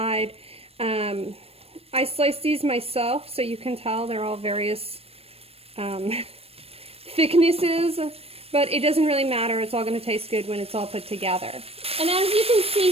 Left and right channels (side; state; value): left; late; 0.28 ms